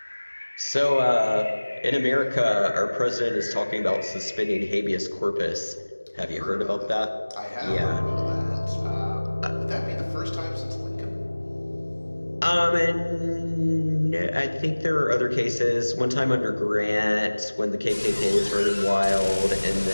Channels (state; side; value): inverted; both; correlation -1.00